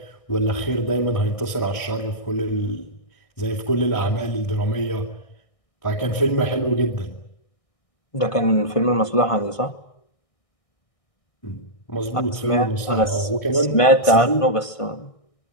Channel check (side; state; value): right; late; 1.6 ms